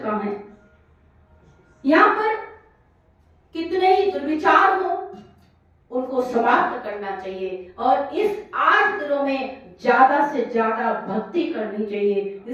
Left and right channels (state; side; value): identical; both; correlation 1.00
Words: है। यहाँ पर कितने ही दुर्विचार हो उनको समाप्त करना चाहिए और इस 8 दिनों में ज्यादा से ज्यादा भक्ति करनी चाहिए।